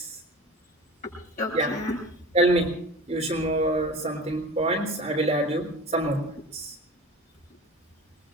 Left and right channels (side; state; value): both; normal; correlation 0.36